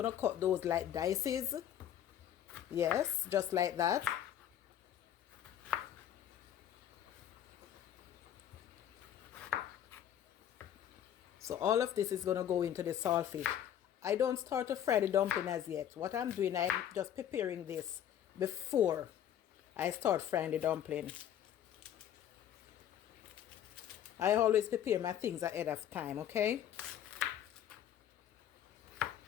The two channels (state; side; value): quieter; right; 10.4 dB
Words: to cut those like dices. Yes, just like that. So all of this is going to go into the saltfish. I don't start to fry the dumpling as yet. What I'm doing, I'm just preparing this before I start frying the dumpling. I always prepare my things ahead of time, okay?